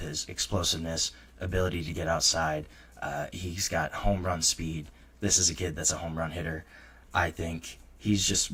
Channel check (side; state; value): both; identical; correlation 1.00